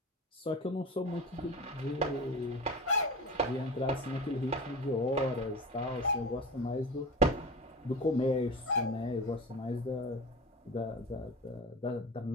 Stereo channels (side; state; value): both; normal; correlation 0.32